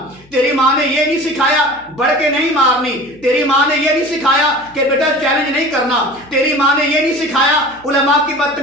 تیری ماں نے یہ نہیں سکھایا بڑھ کے نہیں مارنی، تیری ماں نے یہ نہیں سکھایا کہ بیٹا چیلنج نہیں کرنا، تیری ماں نے یہ نہیں سکھایا علماء کی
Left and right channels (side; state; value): left; noise; hum, 29 dB below the sound